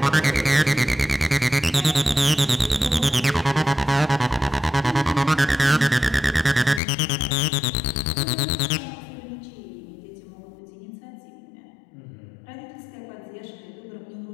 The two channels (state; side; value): drops out; right; at 6.8 s